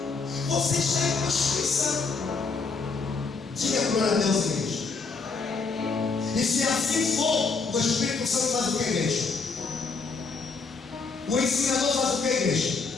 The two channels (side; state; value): right; quieter; 4.5 dB